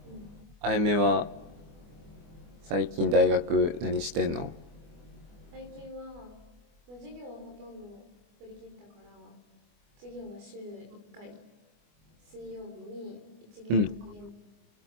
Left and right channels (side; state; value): left; late; 24 ms